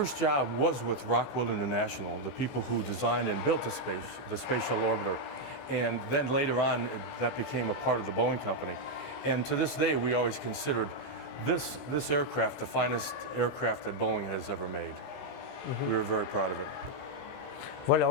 job was with Rockwell International, the people who designed and built the space shuttle orbiter. And then later on, that became a part of the Boeing company. And to this day, we always considered this aircraft the finest aircraft that Boeing has ever made. We were very proud of it. Voilà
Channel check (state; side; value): late; right; 16 ms